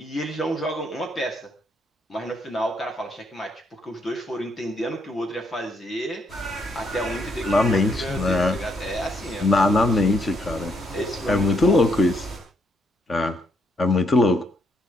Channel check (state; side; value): normal; both; correlation 0.74